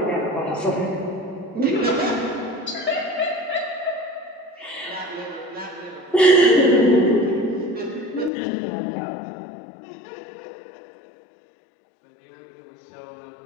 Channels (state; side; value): drops out; right; at 8.3 s